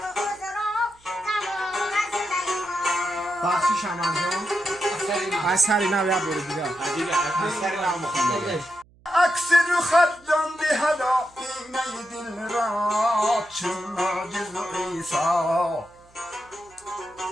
بخشی شمن جان از سری نو یاد برو دیگه از سری نو مخونده عکس رو خط جان دهدا اینه دل را چون معجز عیسی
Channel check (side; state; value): right; noise; hum, 29 dB below the sound